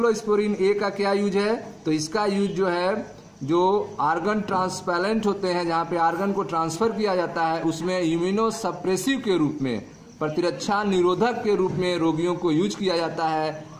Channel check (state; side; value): identical; both; correlation 1.00